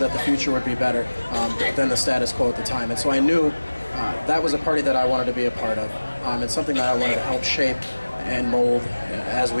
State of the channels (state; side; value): inverted; both; correlation -1.00